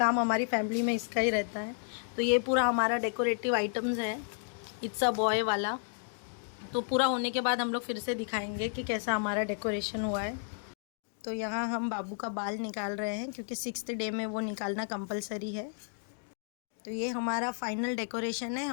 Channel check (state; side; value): silent; right; 56 dB below the other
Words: हमारी फैमिली में इसका ही रहता है। तो ये पूरा हमारा डेकोरेटिव आइटम्स है, इट्स अ बॉय वाला। तो पूरा होने के बाद हम लोग फिर से दिखाएंगे कि कैसा हमारा डेकोरेशन हुआ है। तो यहाँ हम बाबू का बाल निकाल रहे हैं, क्योंकि 6th डे में वो निकालना कंपलसरी है। तो ये हमारा फाइनल डेकोरेशन है,